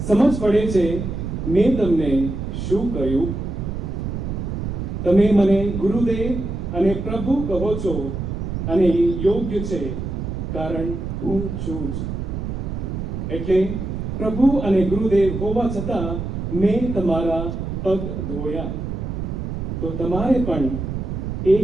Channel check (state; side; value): noise; right; rumble, 4 dB below the sound